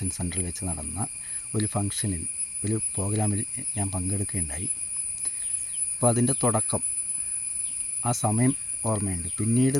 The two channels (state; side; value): normal; both; correlation 0.96